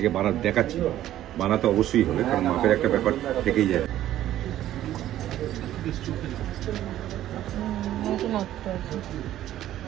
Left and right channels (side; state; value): left; quieter; 12.9 dB